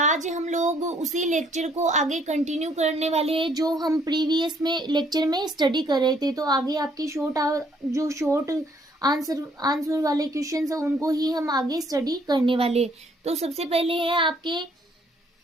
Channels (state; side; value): normal; both; correlation 0.65